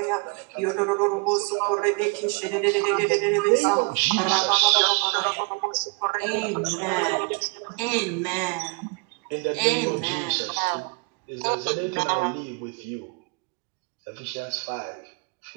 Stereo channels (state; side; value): quieter; left; 32.1 dB